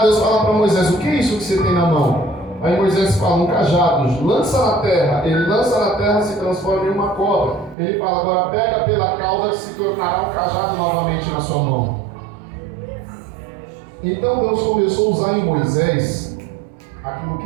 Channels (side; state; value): left; drops out; at 7.8 s